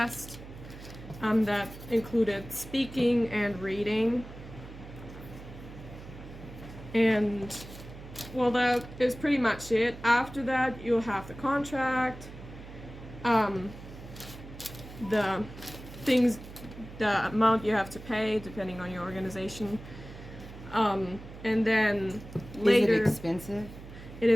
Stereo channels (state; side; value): noise; right; hum, 15 dB below the sound